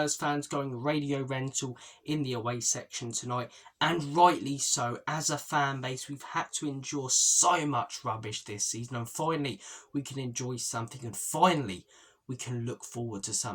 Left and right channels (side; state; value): both; identical; correlation 1.00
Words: fans going radio rental in the away section tonight, and rightly so. As a fan base, we've had to endure so much rubbish this season, and finally we can enjoy something, and finally we can look forward to